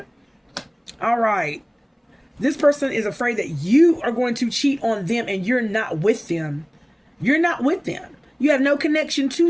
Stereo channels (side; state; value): both; identical; correlation 1.00